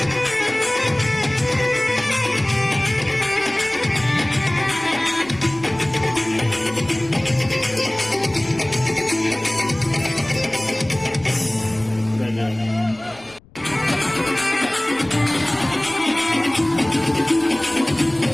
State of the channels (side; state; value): left; noise; rumble, 26 dB below the sound